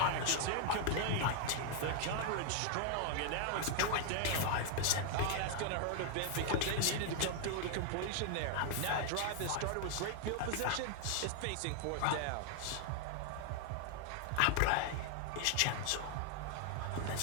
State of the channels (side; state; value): both; different; correlation 0.00